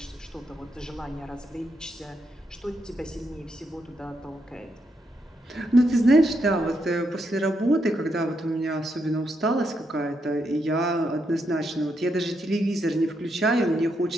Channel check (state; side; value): normal; both; correlation 0.80